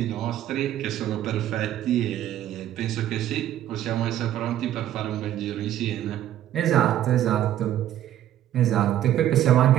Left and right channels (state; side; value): quieter; left; 12.0 dB